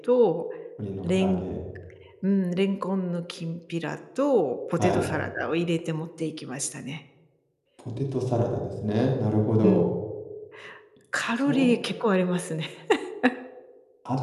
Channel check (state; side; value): identical; both; correlation 1.00